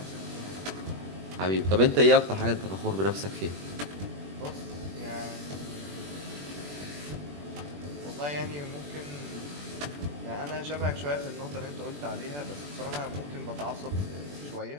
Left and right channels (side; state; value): left; late; 21 ms